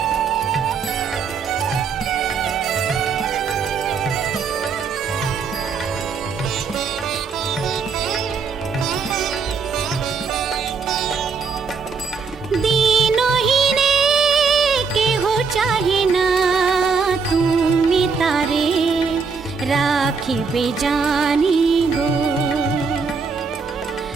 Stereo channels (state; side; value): quieter; left; 5.3 dB